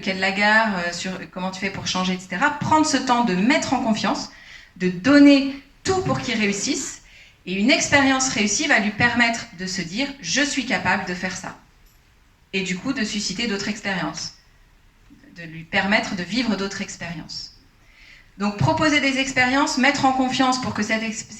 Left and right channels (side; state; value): both; identical; correlation 1.00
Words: de la gare, sur comment tu fais pour changer, etc. Prendre ce temps de mettre en confiance, de donner tout pour qu'il réussisse. Et une expérience réussie va lui permettre de se dire « je suis capable de faire ça ». Et du coup, de susciter d'autres expériences, de lui permettre de vivre d'autres expériences. Donc, proposer des expériences, mettre en confiance pour que